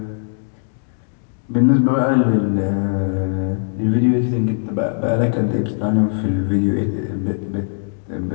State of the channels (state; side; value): silent; right; digital silence